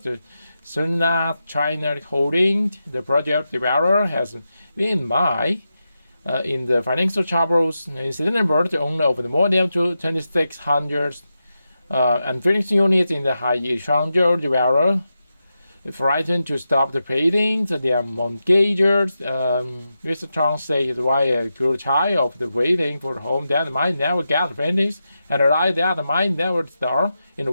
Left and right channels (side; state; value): both; inverted; correlation -0.89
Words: the Sunna China Holding, the project developer, has been in the financial troubles. In September, the owner of the more than 2,600 unfinished units in the Hai Changzhou developer frightened to stop the paintings. Their mortgagers, Mr. Chang said his wife grew tired of the waiting for the home that might never get finished, and the light that might never start. In